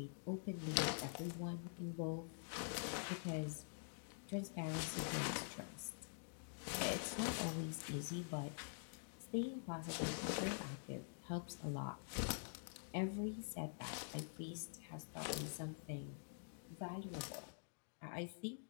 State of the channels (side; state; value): right; silent; digital silence